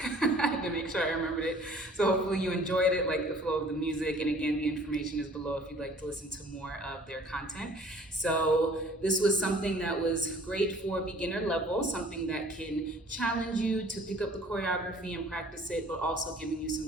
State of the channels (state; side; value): normal; both; correlation 0.53